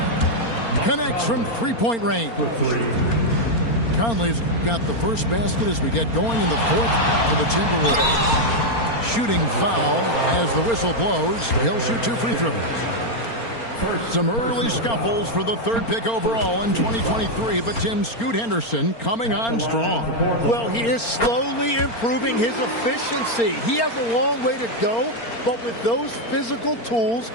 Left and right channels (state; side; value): late; right; 4.3 ms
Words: Connects from 3-point range. Conley's got the first basket as we get going in the 4th for the Timberwolves. Shooting foul as the whistle blows. He'll shoot 2 free throws. Some early scuffles for the 3rd pick overall in 2023, but Tim Scoot Henderson coming on strong. Well, he is slowly improving his efficiency. He has a long way to go, but with those physical tools